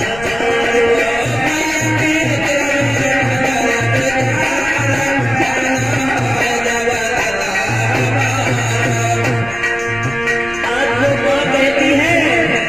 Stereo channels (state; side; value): noise; left; rumble, 15 dB below the sound